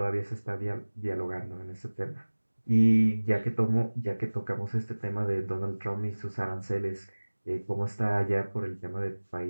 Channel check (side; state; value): both; inverted; correlation -1.00